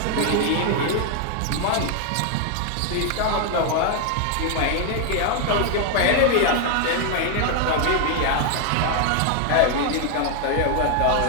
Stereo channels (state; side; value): different; both; correlation 0.00